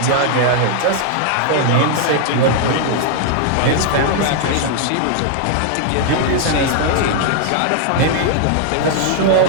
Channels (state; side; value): different; both; correlation 0.00